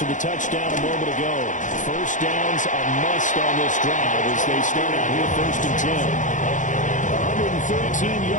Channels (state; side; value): late; right; 0.37 ms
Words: the touchdown a moment ago. First down's a must on this drive as they start out here first and 10. 113